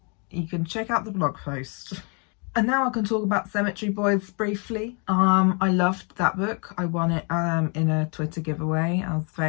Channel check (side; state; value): right; quieter; 36.3 dB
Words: you can check out the blog post. And now I can talk about Cemetery Boys briefly. I loved that book. I won it in a Twitter giveaway. I was